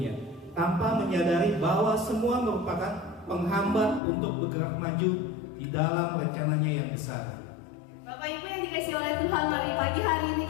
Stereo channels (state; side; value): drops out; right; at 4.0 s